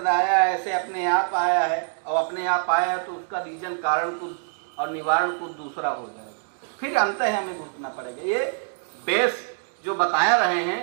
आया है, ऐसे अपने आप आया है और अपने आप आया है तो उसका रीजन कारण कुछ और निवारण कुछ दूसरा हो जाएगा, फिर अंत है हमें घुसना पड़ेगा। ये बेस जो बताया रहे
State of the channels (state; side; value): silent; left; digital silence